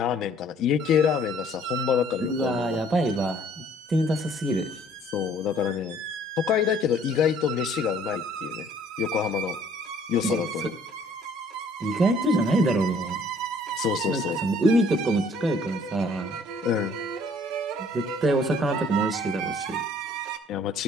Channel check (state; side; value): normal; both; correlation 0.58